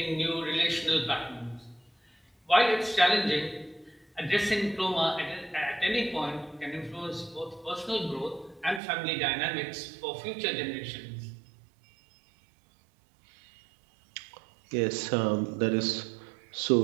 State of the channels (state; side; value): drops out; left; at 8.8 s